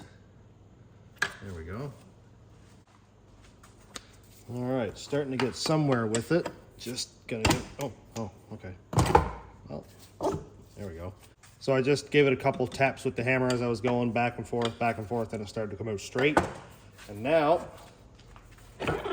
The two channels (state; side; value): identical; both; correlation 1.00